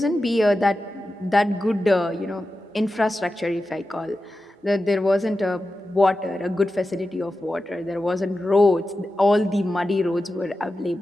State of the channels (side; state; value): both; normal; correlation 0.92